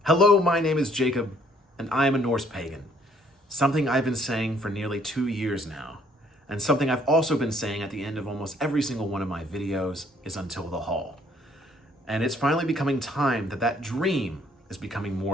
Hello, my name is Jacob, and I am a Norse Pagan. Something I've been saying for nearly 2 years now, and something I've also been saying at the end of almost every single one of my videos is until the Hall. And it's finally becoming time that dream is becoming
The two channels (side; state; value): both; normal; correlation 0.64